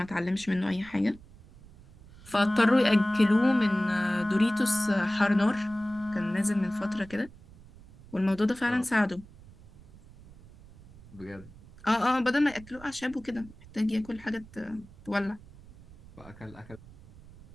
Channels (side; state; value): right; noise; rumble, 21 dB below the sound